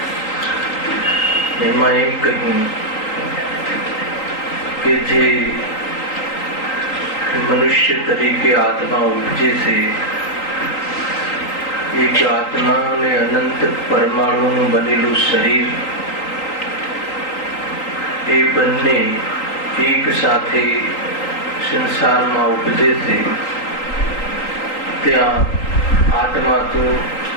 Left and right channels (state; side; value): late; right; 3.8 ms